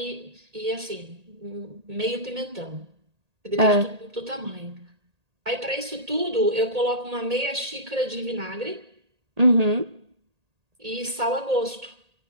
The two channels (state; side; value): late; left; 1.8 ms